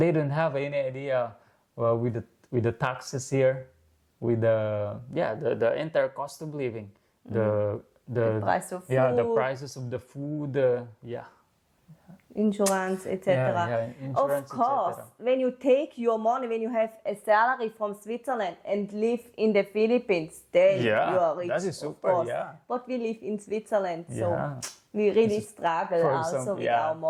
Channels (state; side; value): identical; both; correlation 1.00